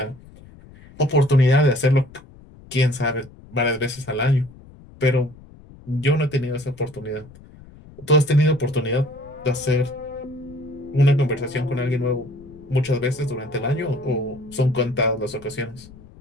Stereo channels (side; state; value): left; noise; rumble, 21 dB below the sound